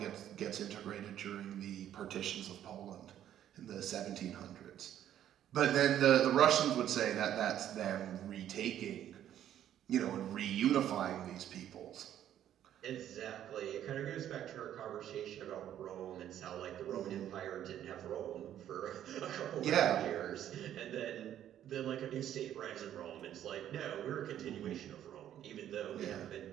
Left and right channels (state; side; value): quieter; left; 11.0 dB